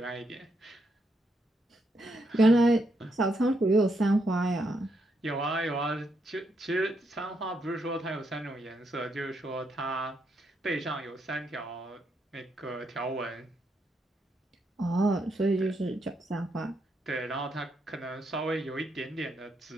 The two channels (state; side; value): normal; both; correlation 0.79